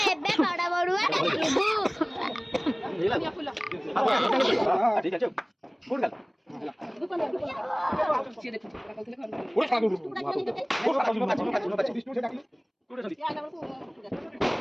एबे बड़ा बड़ुआ डाकिबू ठीक है चल फुट गल से देखो ओरे खा दो ओरे बिष्णु से डाकिले टूटे चली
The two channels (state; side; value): identical; both; correlation 1.00